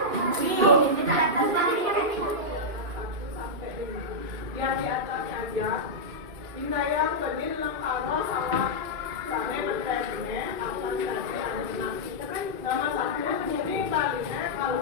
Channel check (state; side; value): late; left; 2.7 ms